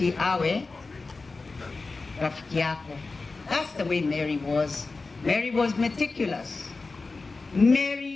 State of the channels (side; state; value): right; quieter; 3.8 dB